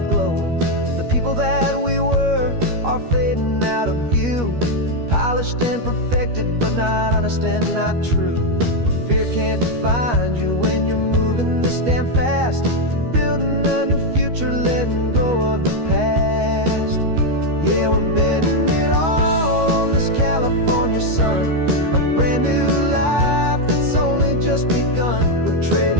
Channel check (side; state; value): left; late; 13 ms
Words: glow. The people that we were are fading out of view. polished and perfected, but not honest and not true. Fear can't find you when you're moving this damn fast, building a new future, letting go of the past. Yeah, we're betting it all on this California sun, a brand new life that's only just begun. We're